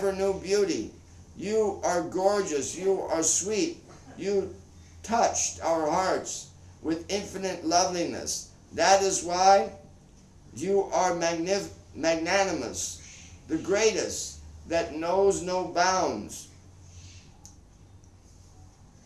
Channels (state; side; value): identical; both; correlation 1.00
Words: new beauty. You are gorgeous. You are sweet. You touched our hearts with infinite loveliness. That is why you are magnanimous, the greatest that knows no bounds.